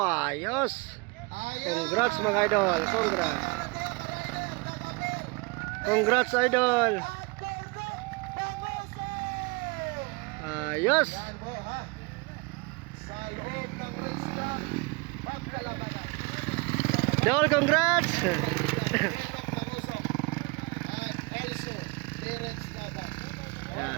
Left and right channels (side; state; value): left; quieter; 27.9 dB